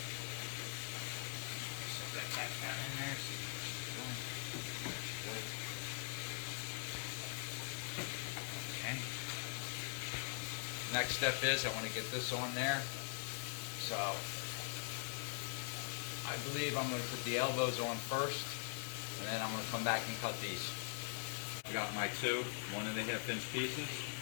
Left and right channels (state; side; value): silent; right; digital silence